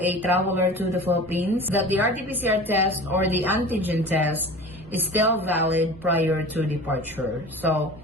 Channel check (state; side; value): noise; right; hum, 21 dB below the sound